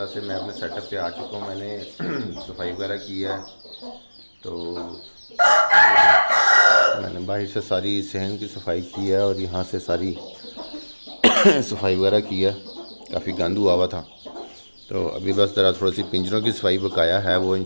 से मैं अपने सेटअप पे आ चुका हूँ। मैंने सफाई वगैरह की है, तो मैंने बाहर से सारी सहन की सफाई की है और यहाँ से सारी सफाई वगैरह की है। काफ़ी गंद हुआ हुआ था, तो अभी बस ज़रा थोड़ी सी पिंजरों की सफाई बकाया है, वो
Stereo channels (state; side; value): inverted; both; correlation -1.00